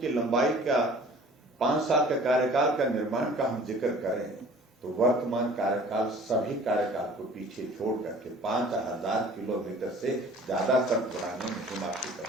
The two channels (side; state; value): both; normal; correlation 0.48